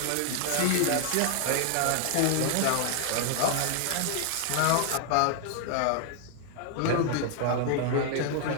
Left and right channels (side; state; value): both; different; correlation 0.00